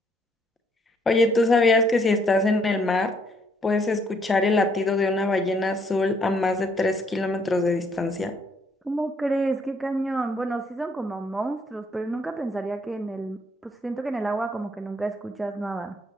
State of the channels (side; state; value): both; normal; correlation 0.68